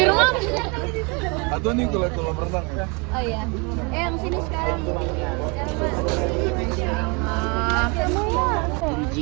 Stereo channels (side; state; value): left; quieter; 31.1 dB